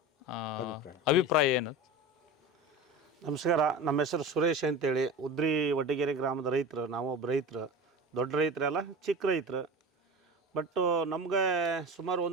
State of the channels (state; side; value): normal; both; correlation 0.30